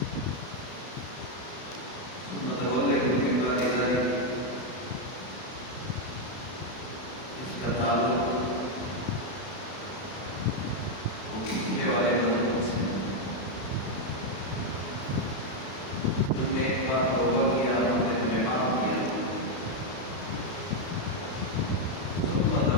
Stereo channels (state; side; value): late; right; 32 ms